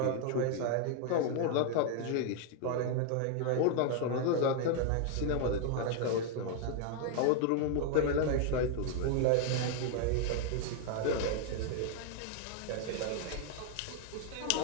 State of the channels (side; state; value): both; different; correlation 0.00